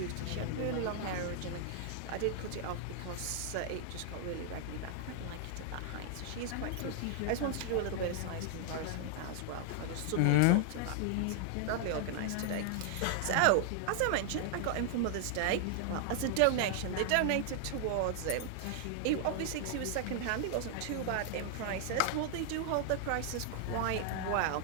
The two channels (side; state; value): both; different; correlation 0.00